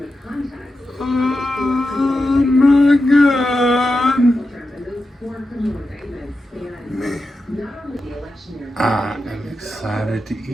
Oh my god. Man, I am excited to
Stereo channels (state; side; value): normal; both; correlation 0.90